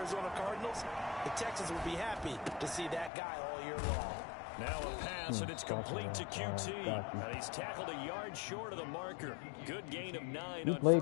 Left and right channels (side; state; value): right; drops out; at 3.1 s